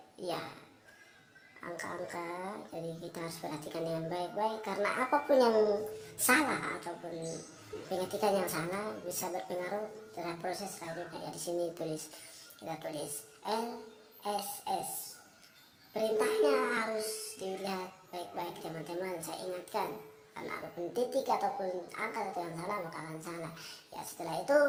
ya angka-angka, jadi kita harus perhatikan dengan baik-baik, karena apapun yang salah ataupun pengetikan yang salah bisa berpengaruh terhadap proses selanjutnya. Ya, di sini kita tulis LSS. Perintahnya harus dilihat baik-baik teman-teman. Saya ingatkan, karena apapun titik ataupun angka atau yang salah maka akan salah. Ya, setelah itu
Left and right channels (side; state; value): both; identical; correlation 1.00